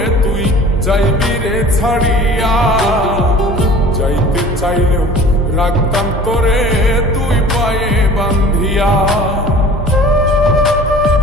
তুই যাইবি রে ছাড়িয়া, যাইতে চাইলেও রাখতাম তোরে তুই পায়ে বান্ধিয়া।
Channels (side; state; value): both; normal; correlation 0.45